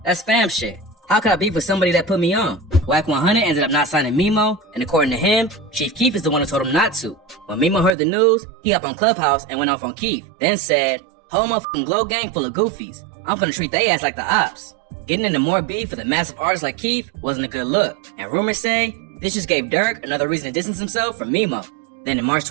That's fam shit. How could I beef with somebody that put me on?" YNR ended up not signing Memo, and according to him, Chief Keef is the one who told him not to. When Memo heard the news, he hopped on Clubhouse and went off on Keef, then said, "Whole motherfucking Glow gang full of goofies. I'm gonna treat they ass like the ops. Getting into more beef with a massive artist like Keith wasn't a good look, and rumors say this just gave Dirk another reason to distance himself from Memo. Then in March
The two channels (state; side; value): drops out; left; at 8.0 s